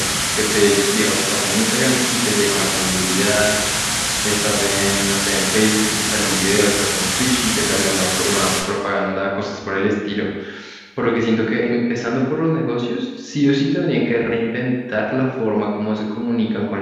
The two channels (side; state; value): both; identical; correlation 1.00